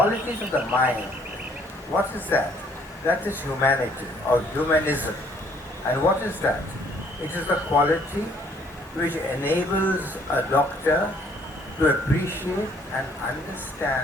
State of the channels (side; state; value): both; normal; correlation 0.63